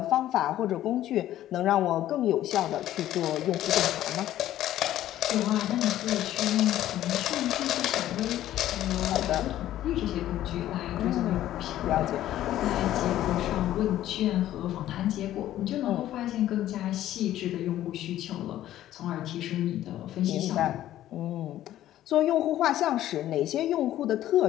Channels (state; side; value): quieter; right; 13.1 dB